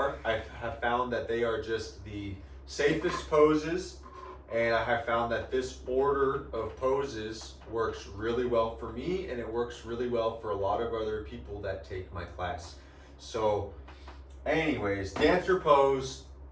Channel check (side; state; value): both; identical; correlation 1.00